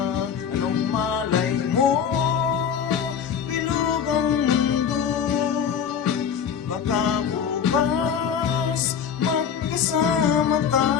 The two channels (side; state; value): right; quieter; 7.7 dB